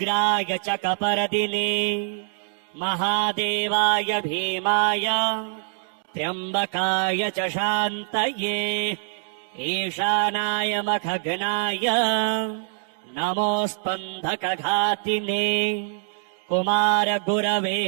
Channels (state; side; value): silent; left; digital silence